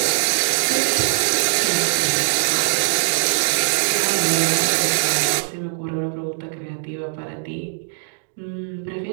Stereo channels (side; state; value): left; silent; digital silence